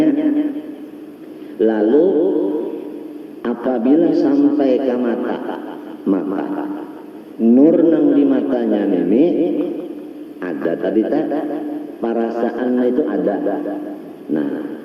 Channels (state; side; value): identical; both; correlation 1.00